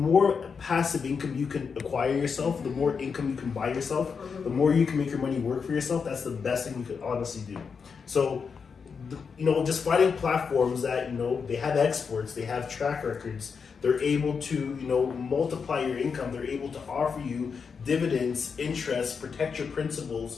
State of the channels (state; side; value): quieter; right; 5.8 dB